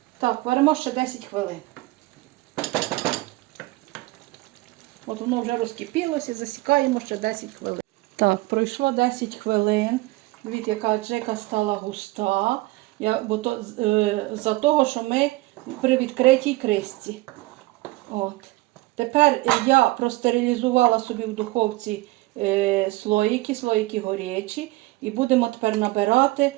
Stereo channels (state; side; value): quieter; left; 20.5 dB